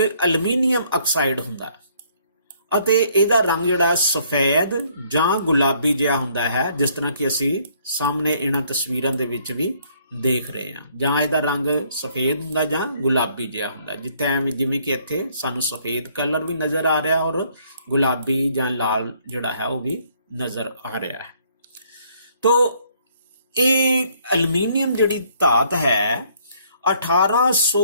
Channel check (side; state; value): both; inverted; correlation -0.65